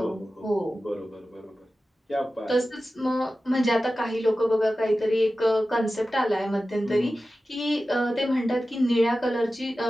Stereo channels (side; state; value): both; normal; correlation 0.94